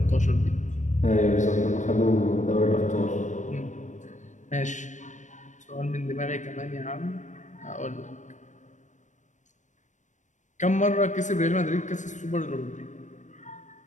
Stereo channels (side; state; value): right; late; 0.35 ms